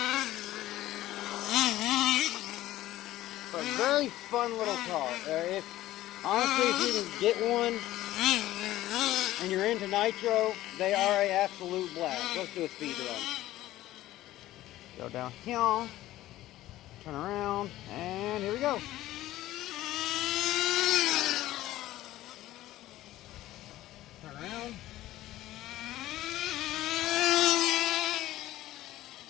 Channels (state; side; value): quieter; right; 15.2 dB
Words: But very fun little car. Honestly, if you can get one, and you're into nitro, they are an absolute blast. Let's do a speed run. Go down here, turn around, and here we go. Turn around.